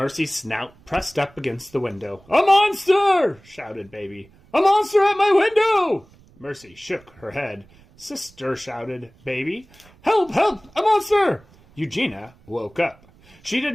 snout pressed up against the window. A monster! Shouted Baby. A monster at my window! Mercy shook her head. Sister, shouted Baby. Help! Help! A monster! Eugenia woke up. She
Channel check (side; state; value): right; noise; rumble, 28 dB below the sound